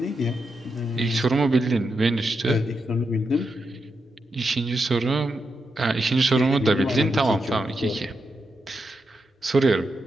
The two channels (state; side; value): normal; both; correlation 0.85